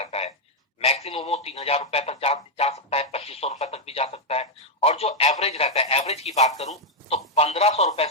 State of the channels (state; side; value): normal; both; correlation 0.00